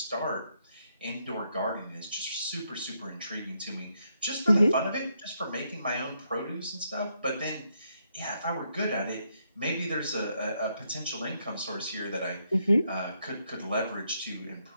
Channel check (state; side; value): inverted; both; correlation -0.77